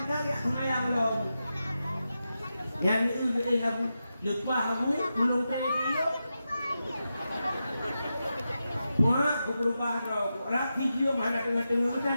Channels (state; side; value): inverted; both; correlation -0.90